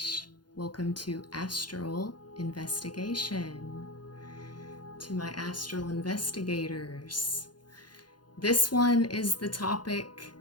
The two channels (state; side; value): late; right; 0.71 ms